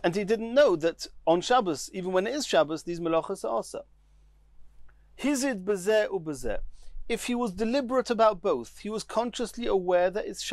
and he didn't know that on Shabbos, even when it is Shabbos, these melachos are also. Hizid bezeh ubezeh. If he was deliberate about both, he was consciously aware that it's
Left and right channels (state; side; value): identical; both; correlation 1.00